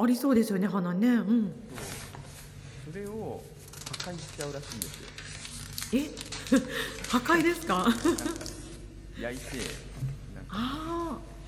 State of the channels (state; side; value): identical; both; correlation 1.00